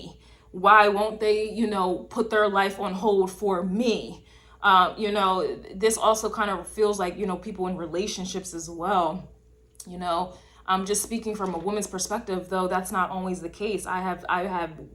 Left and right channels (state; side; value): identical; both; correlation 1.00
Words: Why won't they, you know, put their life on hold for me? You know, this also kind of feels like, you know, people in relationships as well. You know, I'm just speaking from a woman's perspective, though that's not always the case. I have